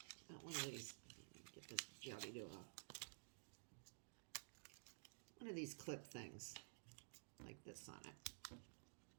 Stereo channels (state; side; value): silent; left; digital silence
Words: not one of these. Get this jobby-do off. One of these clip things, like this on it.